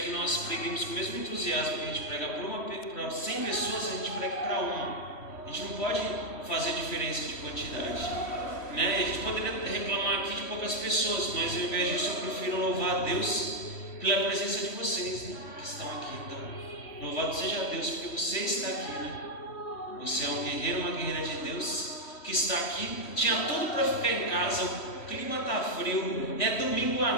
que nós preguemos com o mesmo entusiasmo que a gente prega para 100 pessoas, a gente prega para uma. A gente não pode fazer diferença de quantidade, né? A gente poderia reclamar aqui de poucas pessoas, mas ao invés disso eu prefiro louvar a Deus pela presença de vocês, né, que estão aqui. Então, louvado seja Deus porque você está aqui, né? Você é um guerreiro, uma guerreira de Deus que está aqui. Tinha tudo para ficar em casa, o clima está frio, é domingo à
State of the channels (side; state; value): right; late; 3.1 ms